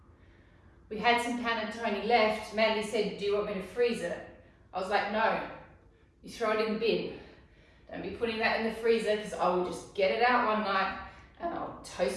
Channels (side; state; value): both; identical; correlation 1.00